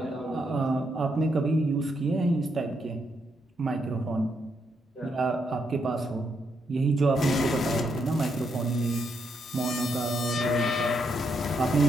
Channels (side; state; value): both; normal; correlation 0.78